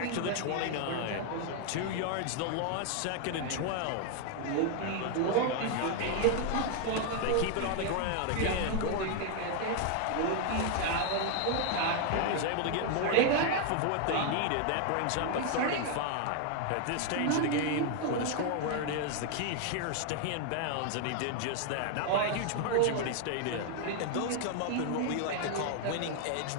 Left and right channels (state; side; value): different; both; correlation 0.00